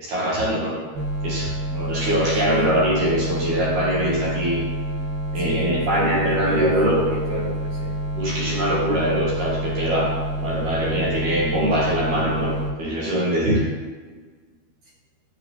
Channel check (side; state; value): left; late; 13 ms